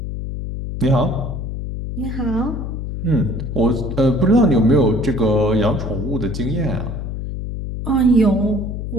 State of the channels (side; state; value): left; noise; hum, 5 dB below the sound